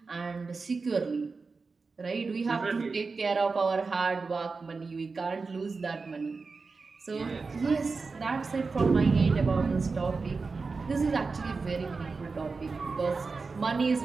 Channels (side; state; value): left; quieter; 4.3 dB